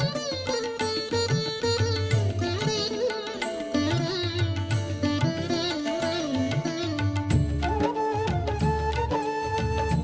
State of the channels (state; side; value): identical; both; correlation 1.00